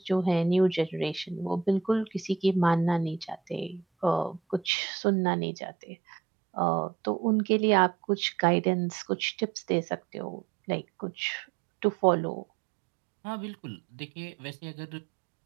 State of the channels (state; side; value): drops out; left; at 4.7 s